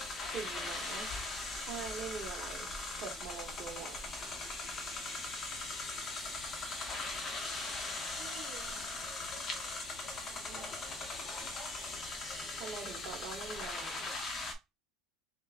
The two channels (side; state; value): both; normal; correlation 0.59